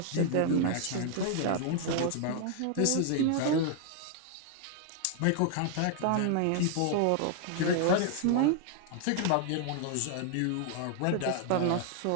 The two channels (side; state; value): both; different; correlation 0.00